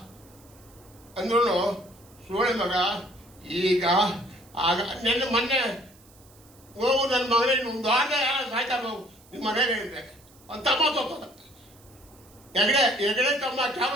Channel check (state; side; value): noise; right; hiss, 27 dB below the sound